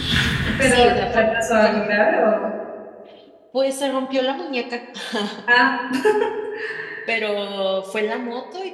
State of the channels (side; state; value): both; identical; correlation 1.00